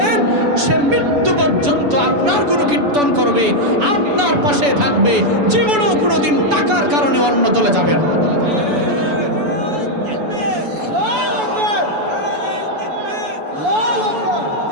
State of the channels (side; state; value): left; late; 7.0 ms